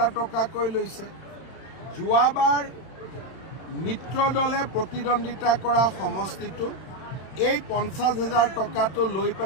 টকাকৈ লৈছে। যোৱাবাৰ মিত্ৰ দলে প্ৰতিদ্বন্দ্বিতা কৰা সমষ্টিটো এই 50,000 টকাটো লৈ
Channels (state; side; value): late; right; 31 ms